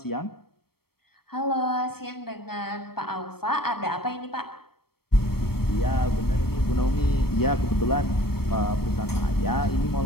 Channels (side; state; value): right; late; 0.95 ms